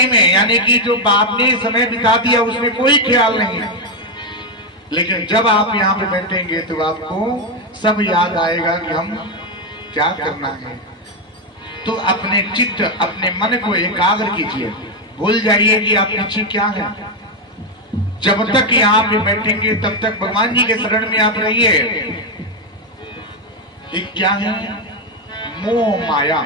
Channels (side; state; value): both; normal; correlation 0.06